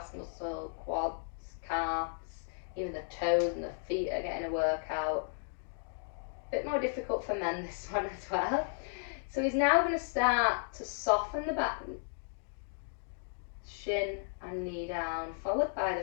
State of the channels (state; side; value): silent; right; digital silence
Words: muscle, quads, calves, even the toes and the feet are getting a workout. A bit more difficult for men this one as well. So he's now going to start to soften the back, shin and knee down, followed by